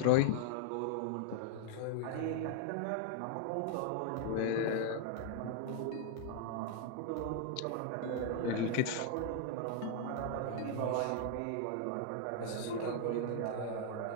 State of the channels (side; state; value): both; different; correlation 0.00